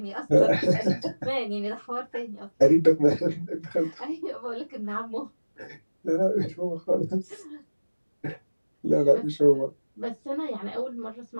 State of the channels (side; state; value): both; inverted; correlation -1.00